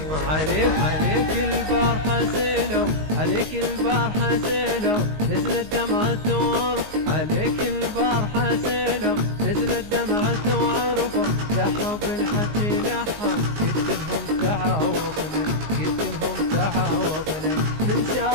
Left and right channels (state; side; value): late; left; 19 ms